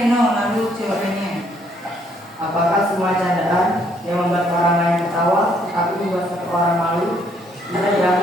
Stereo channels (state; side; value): normal; both; correlation 0.68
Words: lalu jawabannya. Apakah semua candaan yang membuat orang lain ketawa tetapi membuat satu orang malu bisa